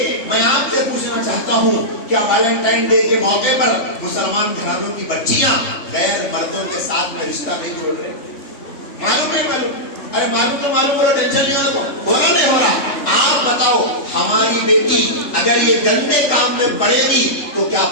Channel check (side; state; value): right; late; 3.5 ms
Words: मैं आपसे पूछना चाहता हूँ, क्या वैलेंटाइन डे के मौके पर मुसलमान घरानों की बच्चियां गैर मर्दों के साथ में रिश्ता नहीं जोड़ रहे? मालूम है? मालूम? अरे मालूम तो मालूम, बोलो, टेंशन नहीं हो रहा नहीं हो रहा। आप बताओ, हमारी बेटी अगर ये गंदे काम में पड़ेगी तो क्या